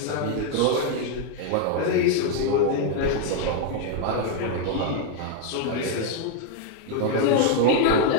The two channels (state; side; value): different; both; correlation 0.01